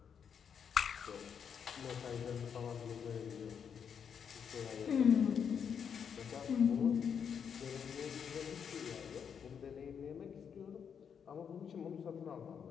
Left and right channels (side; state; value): right; quieter; 7.3 dB